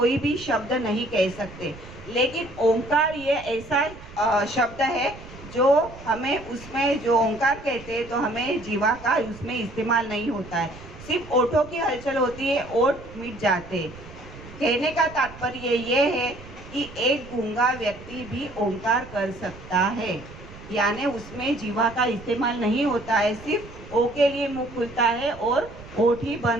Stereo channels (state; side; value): noise; right; rumble, 17 dB below the sound